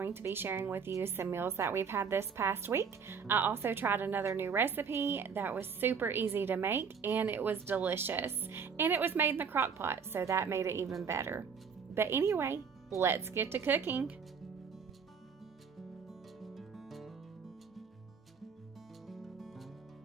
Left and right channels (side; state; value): left; quieter; 6.2 dB